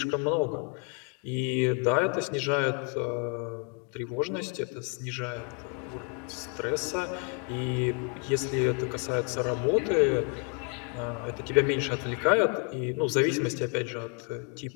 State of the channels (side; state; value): right; quieter; 37.4 dB